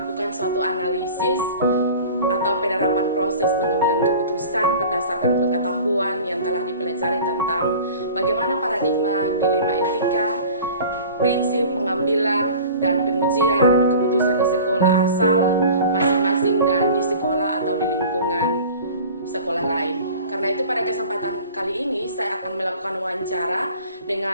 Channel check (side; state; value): both; inverted; correlation -0.42